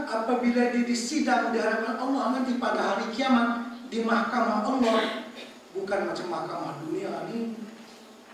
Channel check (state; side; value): identical; both; correlation 1.00